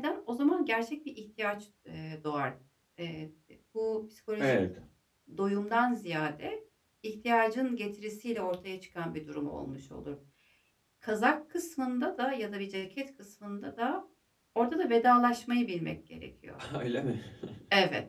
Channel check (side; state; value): both; identical; correlation 1.00